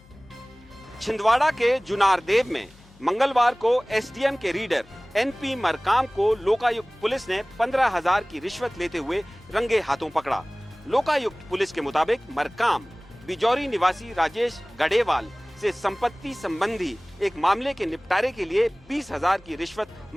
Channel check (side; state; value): left; noise; hum, 26 dB below the sound